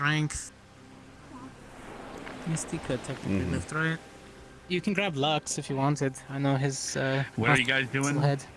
Misty could technically lift, right? You can grab Lux if you wanted. I know his. What are you guys doing? Head.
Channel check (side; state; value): both; identical; correlation 1.00